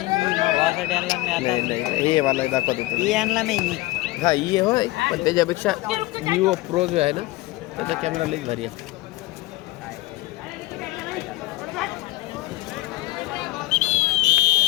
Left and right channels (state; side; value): quieter; right; 19.5 dB